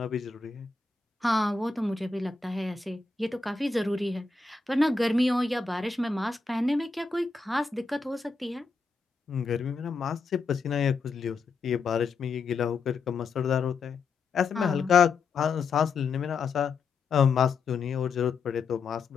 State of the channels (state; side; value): quieter; right; 4.5 dB